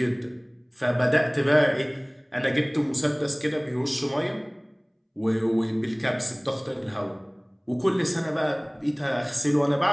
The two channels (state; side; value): identical; both; correlation 1.00